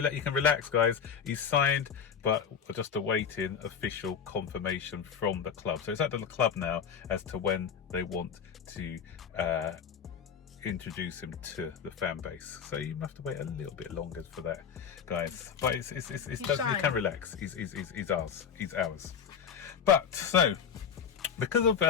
relax, guys. He's signed, but we're just awaiting official confirmation from the club. So it's at the club now as to when they want to introduce him to the fan base. So you have to wait a little bit longer for that, guys. But you can relax. He's ours. He's ours. But so, because of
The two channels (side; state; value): right; quieter; 7.2 dB